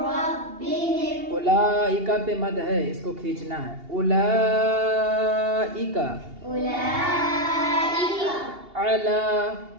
ربهم. أولئك पे मद है, इसको खींचना है. أولئك أولئك على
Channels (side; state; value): left; late; 2.8 ms